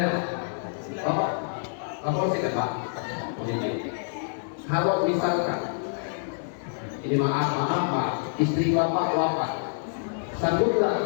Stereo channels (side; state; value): right; silent; 60 dB below the other